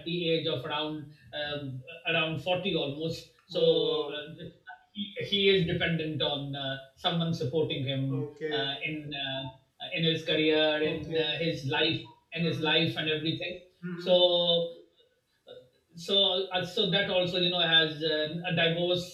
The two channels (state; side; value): identical; both; correlation 1.00